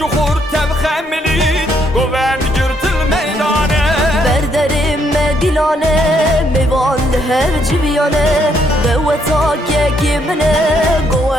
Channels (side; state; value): both; normal; correlation 0.72